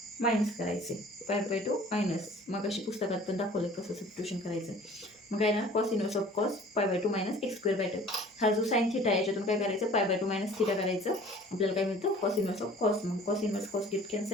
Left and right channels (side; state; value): both; normal; correlation 0.48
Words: मायनस करायचे. π/2 मायनस. मग अशी पुस्तकात पण दाखवलं कसं सबस्टिट्यूशन करायचं. मग काय ना cos inverse of cos π/2 minus x square by 2. हा जो साईन थिटा आहे याच्यातून काय करायचं π/2 मायनस थिटा करायचं. आपल्याला काय मिळतं कॉस इनवर्स ऑफ कॉस. मग cos inverse cos gate